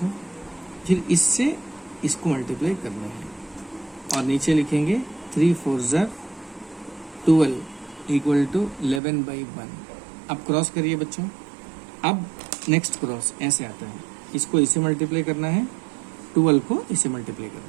फिर इससे इसको मल्टीप्लाई करना है, और नीचे लिखेंगे 3 4s are 12 equal to 11 by 1। अब क्रॉस करिए बच्चों। अब नेक्स्ट क्रॉस ऐसे आता है, इसको इसे मल्टीप्लाई करना है, 12 को इसे मल्टीप्लाई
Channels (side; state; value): left; drops out; at 9.0 s